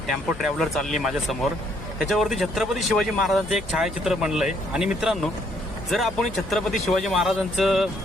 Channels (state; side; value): normal; both; correlation 0.68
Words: टेम्पो ट्रॅव्हलर चालली माझ्या समोर. त्याच्यावरती छत्रपती शिवाजी महाराजांचं एक छायाचित्र बनलंय. आणि मित्रांनो, जर आपण छत्रपती शिवाजी महाराजांचं